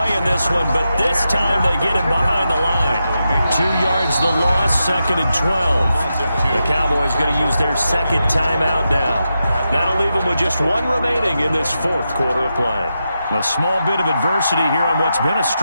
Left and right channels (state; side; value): inverted; both; correlation -0.88